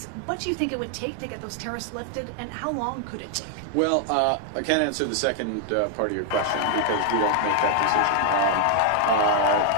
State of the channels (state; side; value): different; both; correlation 0.00